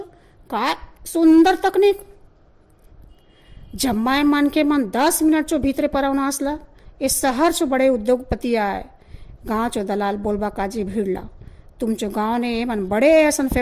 का सुंदर तकनीक जब माय मन के मन 10 मिनट चो भीतरे परवना असला इस शहर चो बड़े उद्योगपति आए गाँव चो दलाल बोलबा काजी भीड़ला तुमचो गाँव ने मन बड़े ऐसा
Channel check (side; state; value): both; identical; correlation 1.00